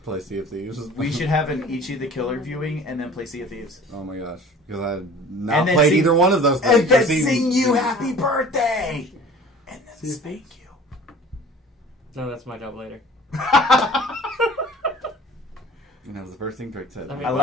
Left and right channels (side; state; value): both; normal; correlation 0.46